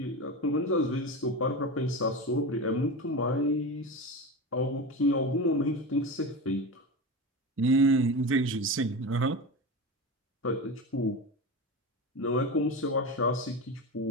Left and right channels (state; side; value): normal; both; correlation 0.24